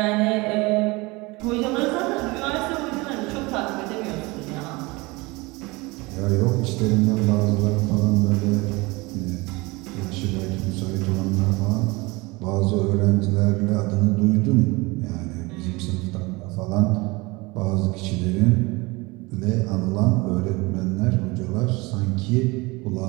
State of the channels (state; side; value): quieter; left; 24.0 dB